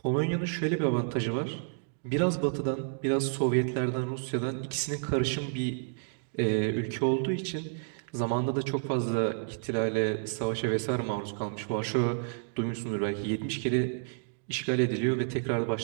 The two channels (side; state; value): left; silent; digital silence